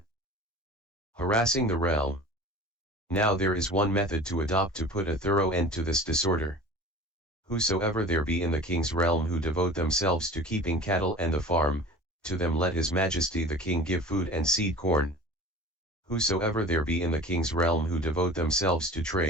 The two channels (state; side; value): normal; both; correlation 0.39